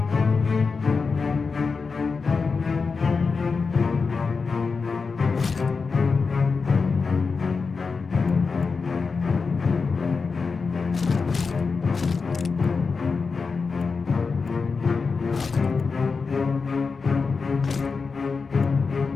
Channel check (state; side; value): quieter; right; 4.8 dB